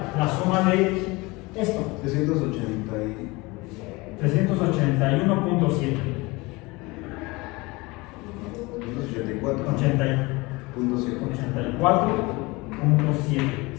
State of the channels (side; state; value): right; quieter; 23.7 dB